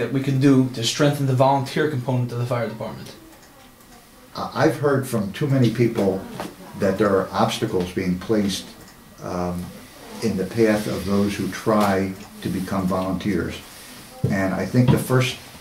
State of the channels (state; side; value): identical; both; correlation 1.00